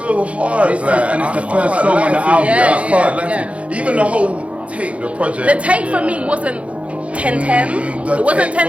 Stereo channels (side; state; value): left; late; 0.063 ms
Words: hard. And it's the first song on the album. Yeah. Even the whole tape, the project. The tape for me wasn't 10-10. It wasn't